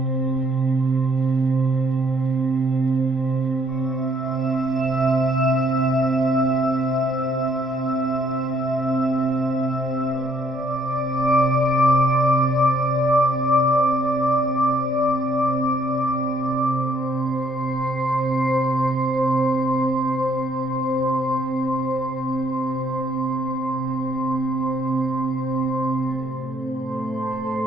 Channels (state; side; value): normal; both; correlation 0.67